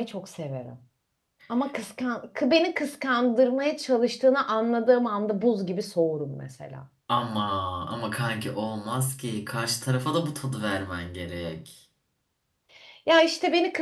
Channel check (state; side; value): identical; both; correlation 1.00